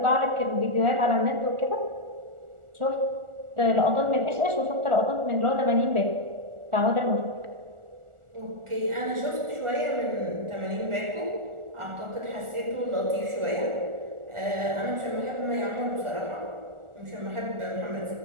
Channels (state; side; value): late; left; 1.4 ms